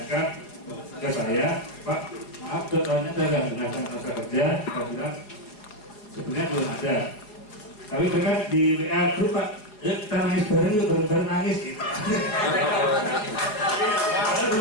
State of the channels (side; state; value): right; late; 4.7 ms